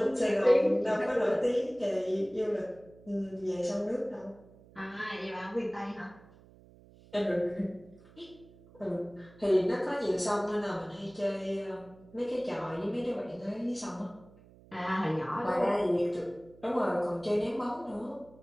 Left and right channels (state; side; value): noise; right; hum, 24 dB below the sound